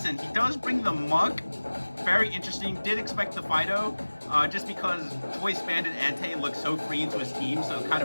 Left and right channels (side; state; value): both; inverted; correlation -1.00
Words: He does bring the Muck. Very interesting. Did expect the Fido, just because Choice Bandit Ante looks so free into his team, so it kind